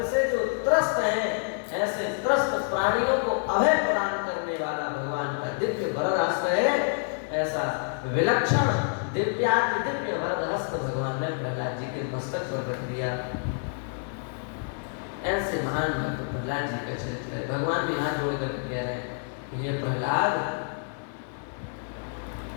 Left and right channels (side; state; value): right; silent; digital silence